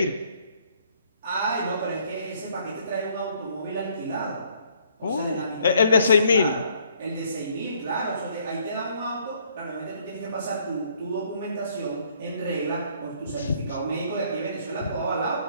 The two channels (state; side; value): inverted; both; correlation -0.65